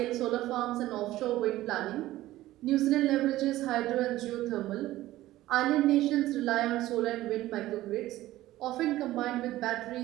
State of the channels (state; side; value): quieter; left; 15.8 dB